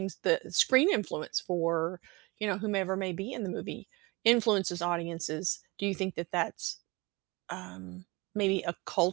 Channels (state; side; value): quieter; left; 24.9 dB